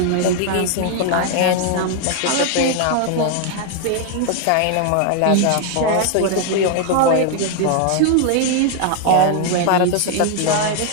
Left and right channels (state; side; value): different; both; correlation 0.00